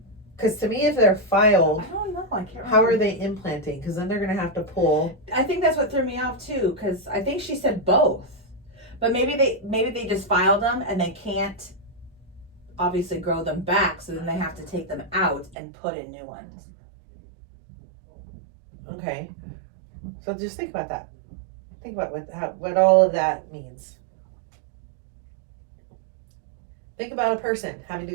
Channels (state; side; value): drops out; left; at 15.6 s